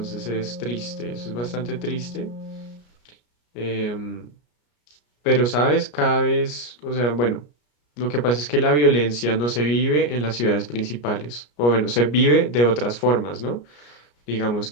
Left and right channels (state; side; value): late; right; 33 ms